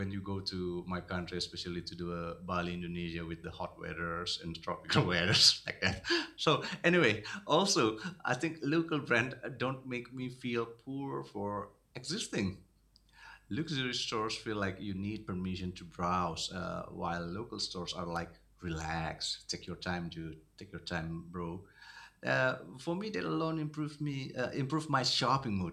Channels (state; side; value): identical; both; correlation 1.00